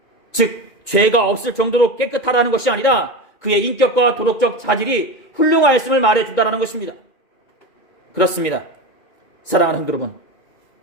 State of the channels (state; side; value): late; right; 2.1 ms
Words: 즉 죄가 없을 정도로 깨끗하다는 것이 아니라 그의 인격과 도덕적 자질이 훌륭하였음을 말해준다는 것입니다. 그렇습니다. 사랑하는 성도 여러분,